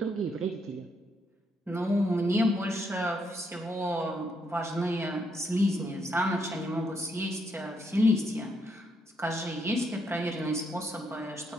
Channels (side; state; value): both; normal; correlation 0.76